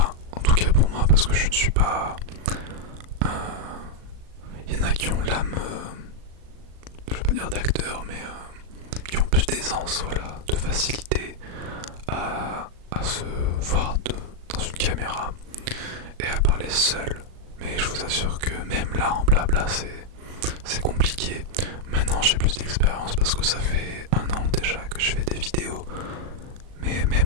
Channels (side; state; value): left; late; 37 ms